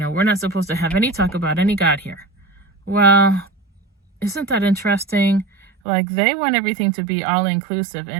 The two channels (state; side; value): drops out; left; at 5.7 s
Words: we're not supposed to have any talk about any God here. Well, isn't that interesting? Like, they want everything to be all inclusive.